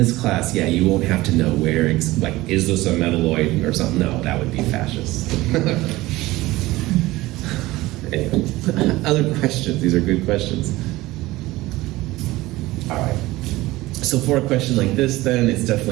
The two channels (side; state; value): left; quieter; 18.7 dB